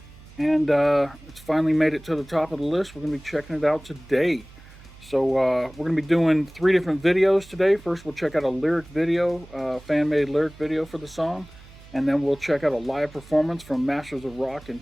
And it's finally made it to the top of the list. We're going to be checking it out today. So we're going to be doing 3 different videos today. First we'll check out a lyric video, fan-made lyric video for the song. And then we'll check out a live performance from Masters of Rock in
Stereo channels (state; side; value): noise; right; hum, 21 dB below the sound